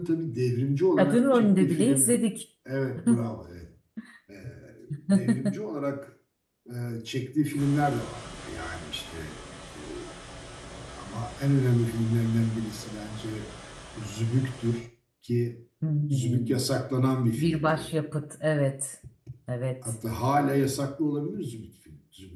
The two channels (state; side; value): identical; both; correlation 1.00